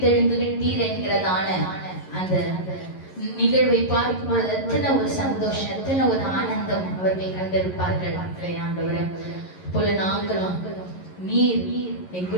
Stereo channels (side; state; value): right; late; 11 ms